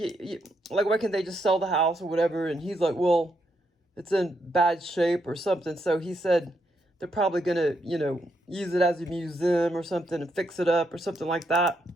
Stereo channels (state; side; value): normal; both; correlation 0.79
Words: why can't they just sell the house or whatever? And he's like, well, it's in bad shape or something. So he said they're probably going to, you know, use it as a museum or something and fix it up or something like that.